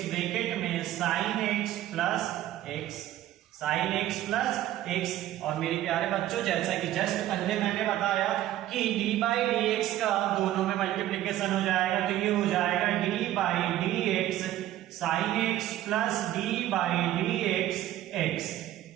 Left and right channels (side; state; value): left; quieter; 13.6 dB